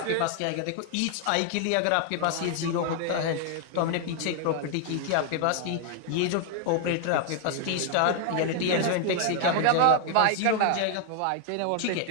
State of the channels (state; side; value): different; both; correlation 0.00